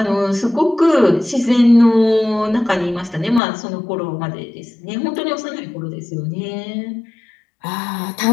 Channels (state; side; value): drops out; right; at 3.4 s